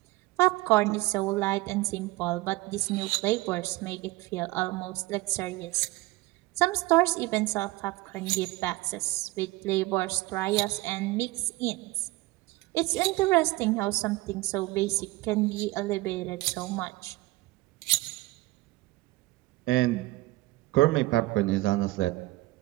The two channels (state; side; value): quieter; left; 19.9 dB